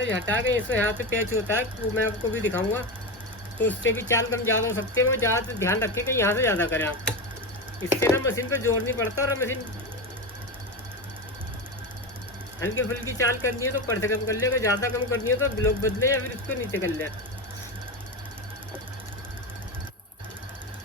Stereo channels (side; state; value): both; normal; correlation 0.19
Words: हटा के इसमें यहाँ से पैच होता है, वो मैं आपको भी दिखाऊंगा। तो उससे भी चाल कम ज़्यादा हो सकती है। वो ज़्यादा ध्यान रखें कि यहाँ से ज़्यादा करें आप, इससे ना मशीन पर जोर नहीं पड़ता। और मशीन हल्की फुल्की चाल करनी है तो पर से कम कर ले, अगर ज़्यादा कम करनी है तो ब्लॉक बदले या फिर इसको नीचे कर ले।